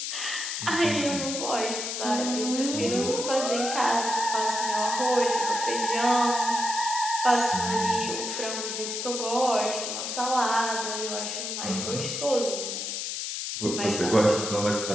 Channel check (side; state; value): left; noise; hiss, 4 dB below the sound